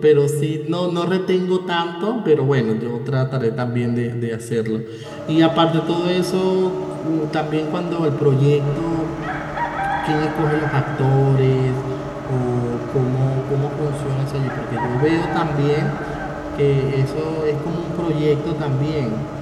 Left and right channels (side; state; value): both; identical; correlation 1.00